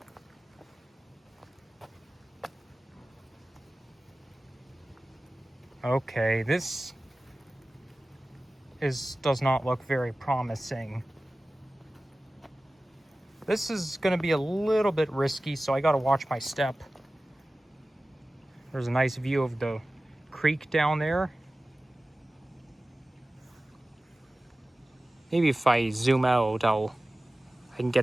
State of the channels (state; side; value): normal; both; correlation 0.96